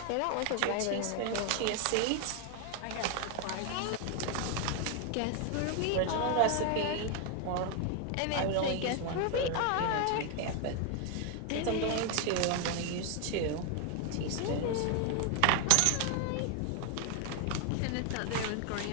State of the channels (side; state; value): both; different; correlation 0.00